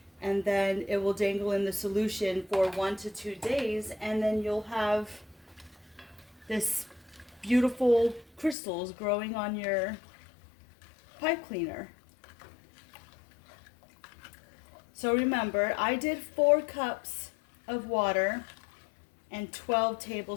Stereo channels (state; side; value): drops out; right; at 8.6 s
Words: And then it will dangle in the solution for 1 to 2 days. And then you'll have this beautiful crystals growing on your pipe cleaner. So remember, I did 4 cups of water and 12